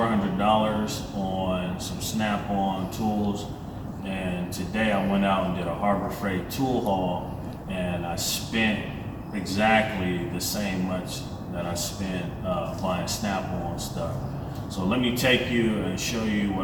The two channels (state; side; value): identical; both; correlation 1.00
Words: on some Snap-on tools, and today I went out and did a Harbor Freight tool haul, and I spent exactly the same much that I spent buying Snap-on stuff. So let me take you and show you